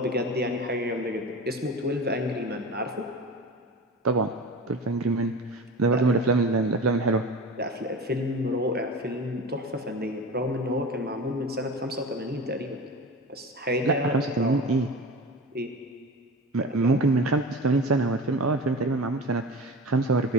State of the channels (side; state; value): both; normal; correlation 0.32